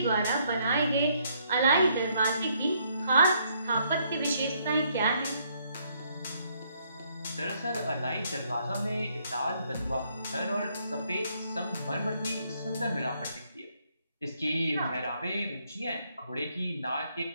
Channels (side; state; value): both; inverted; correlation -0.70